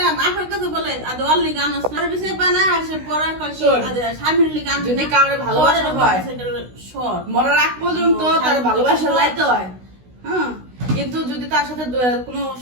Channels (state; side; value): late; left; 16 ms